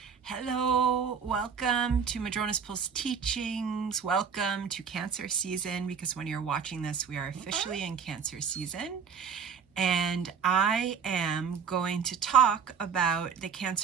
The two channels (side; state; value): left; quieter; 6.7 dB